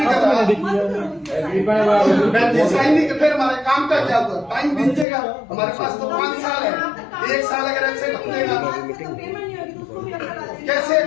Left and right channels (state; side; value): drops out; right; at 5.1 s